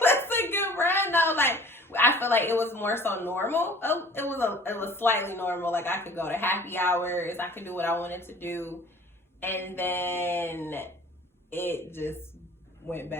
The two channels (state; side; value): normal; both; correlation 0.48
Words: was a good run though. Like, I feel like it was more so normal. It was slightly normal. Like, I could go to happy hours. I could do what I wanted to do. And then it just went